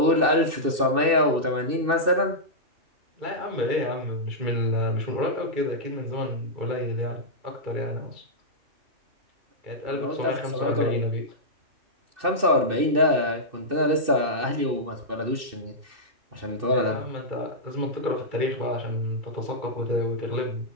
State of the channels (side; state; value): left; late; 2.6 ms